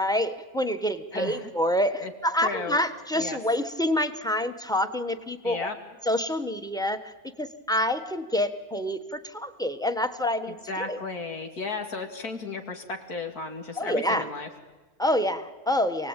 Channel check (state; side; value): normal; both; correlation 0.39